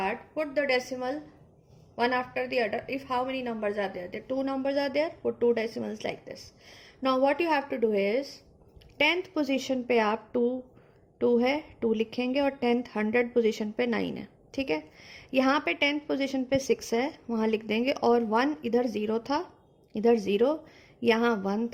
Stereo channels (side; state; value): both; identical; correlation 1.00